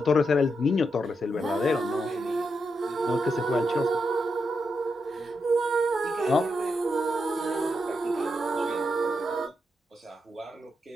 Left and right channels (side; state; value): both; normal; correlation 0.84